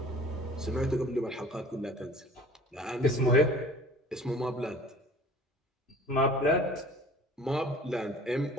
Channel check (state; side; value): normal; both; correlation 0.47